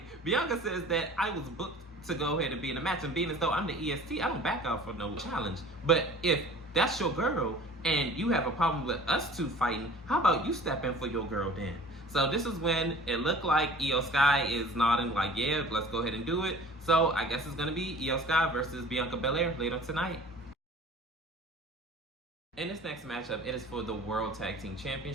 Bianca says that I was booked to go ahead and be in a match, and being as though I'm the EST, I don't back out for no challenge. But if that's your girl and you have a problem with us two fighting, how about you step in for your girl then? So this is when it looked like Io Sky is nodding like, yeah, let's go ahead and do it. So I guess it's going to be Io Sky versus Bianca Belair later tonight. In this next matchup, it is for the World Tag Team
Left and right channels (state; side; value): normal; both; correlation 0.45